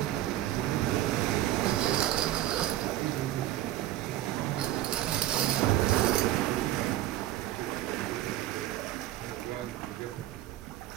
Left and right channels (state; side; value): quieter; left; 13.9 dB